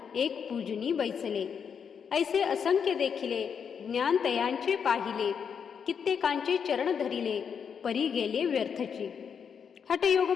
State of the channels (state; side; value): quieter; right; 7.0 dB